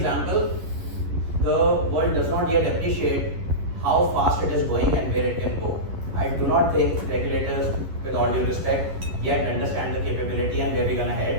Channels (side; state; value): left; late; 11 ms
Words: The world does not yet appreciate how fast it is going and where it can go. I do not think regulators, with all due respect, yet understand the capability and where we're going to